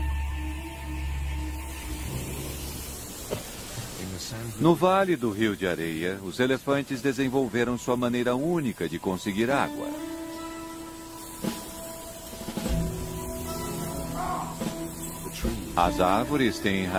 No Vale do Rio de Areia, os elefantes desenvolveram sua maneira única de conseguir água. As árvores têm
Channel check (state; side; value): identical; both; correlation 1.00